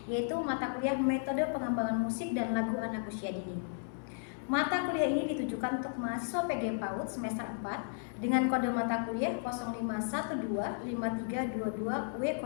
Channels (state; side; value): silent; right; digital silence